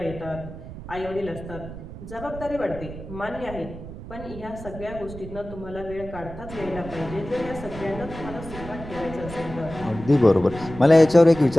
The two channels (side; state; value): right; noise; rumble, 12 dB below the sound